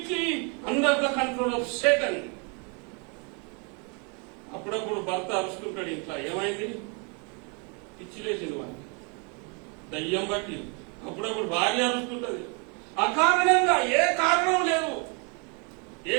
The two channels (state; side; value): quieter; left; 35.1 dB